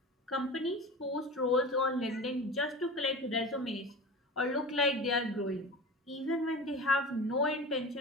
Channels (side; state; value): both; normal; correlation 0.33